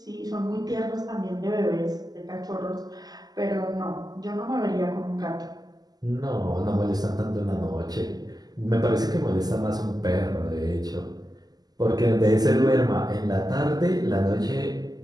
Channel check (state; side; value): late; left; 0.19 ms